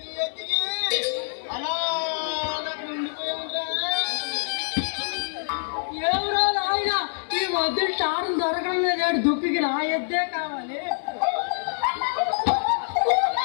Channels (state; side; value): silent; right; 59 dB below the other